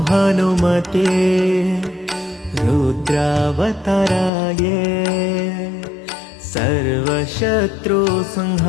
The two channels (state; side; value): drops out; right; at 4.3 s